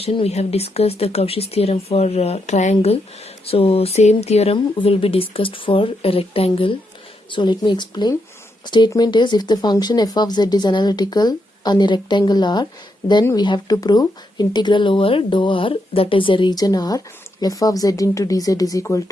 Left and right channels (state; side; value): normal; both; correlation 0.81